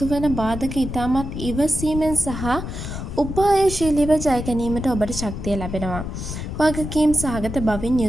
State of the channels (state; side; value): noise; left; rumble, 6 dB below the sound